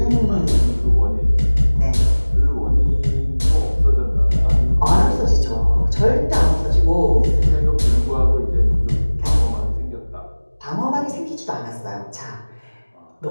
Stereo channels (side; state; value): both; inverted; correlation -1.00